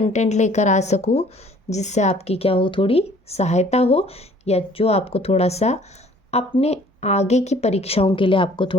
लेकर आ सकूँ जिससे आपकी क्या हो, थोड़ी सहायता हो, या जो आपको थोड़ा सा अपने आगे की परीक्षाओं के लिए आपको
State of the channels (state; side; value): normal; both; correlation 0.55